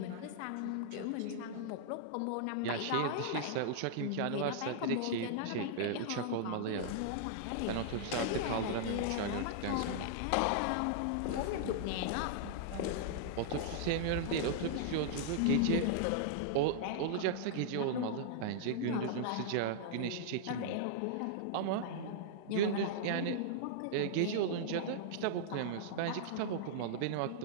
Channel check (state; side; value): different; both; correlation -0.01